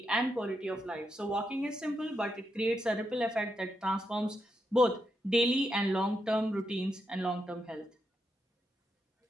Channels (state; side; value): normal; both; correlation 0.83